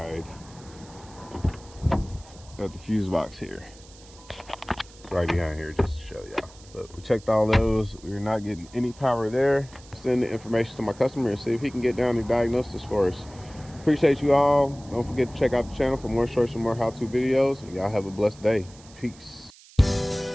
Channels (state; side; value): noise; right; hiss, 23 dB below the sound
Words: of the fuse box here. It's right behind here, just to show y'all. But we checked all those. We're not getting any power there. Send the information to my customer and see if he can get down and diagnose this for us. Appreciate you all. Don't forget to check out the channel for more shorts and more how-to videos. And y'all have a blessed day. Peace.